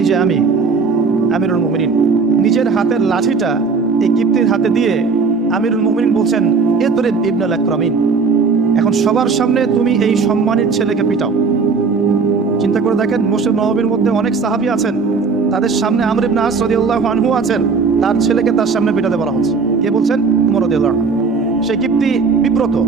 যে আমি আমিরুল মুমিনিন। নিজের হাতের লাঠিটা এই কিপ্তির হাতে দিয়ে আমিরুল মুমিনিন বলছেন, ইদরিব ইবনুল আকরামিন, এখন সবার সামনে তুমি এই সম্মানিত ছেলেকে পিটাও। চিন্তা করে দেখেন, মসজিদ নববীর মধ্যে অনেক সাহাবী আছেন, তাদের সামনে আমর ইবনে আস রাদিয়াল্লাহু আনহু আছেন, তার ছেলেকে তার সামনে পিটাতে বলা হচ্ছে। কে বলছেন? ওমর রাদিয়াল্লাহু আনহু। সেই কিপ্তি বিব্রত,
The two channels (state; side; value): quieter; left; 4.8 dB